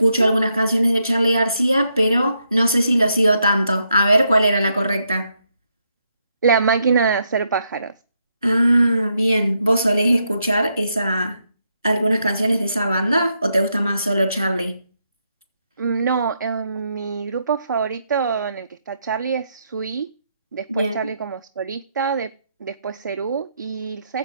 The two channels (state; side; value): inverted; both; correlation -0.79